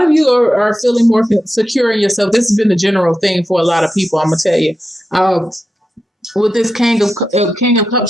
you are feeling more secure in yourself. This has been the general thing for a lot of people. I'm gonna tell you. With this King of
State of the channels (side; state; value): both; normal; correlation 0.90